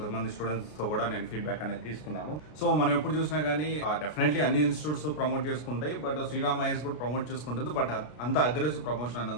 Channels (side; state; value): right; late; 33 ms